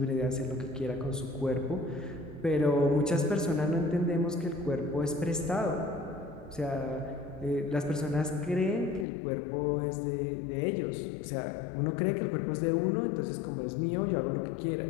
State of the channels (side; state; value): right; drops out; at 9.1 s